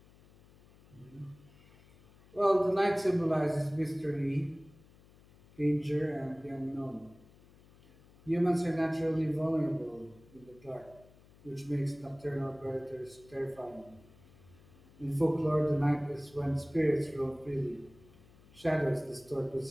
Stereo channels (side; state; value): left; noise; hum, 25 dB below the sound